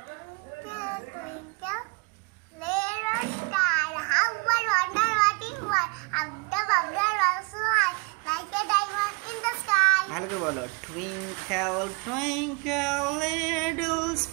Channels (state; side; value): quieter; left; 30.6 dB